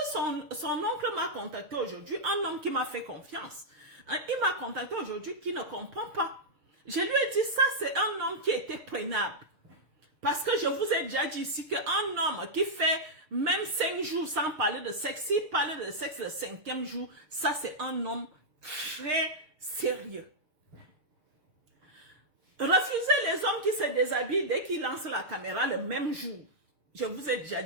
son oncle m'a contacté aujourd'hui, un homme qui m'a fait confiance. Il m'a contacté aujourd'hui qui ne comprend pas. Je lui ai dit, ça c'est un homme qui était prenable. Parce que je vous ai déjà dit ici qu'un homme qui fait même 5 jours sans parler de sexe, s'il parlait de sexe le 5e jour, ça c'est un homme très sérieux. Refusez les hommes qui se déshabillent dès qu'ils lancent la caméra le même jour. Je vous ai déjà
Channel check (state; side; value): late; left; 6.5 ms